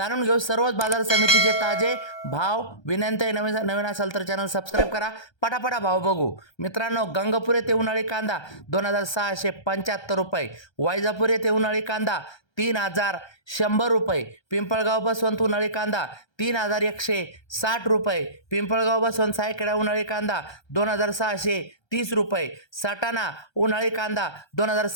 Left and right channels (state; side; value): late; right; 1.3 ms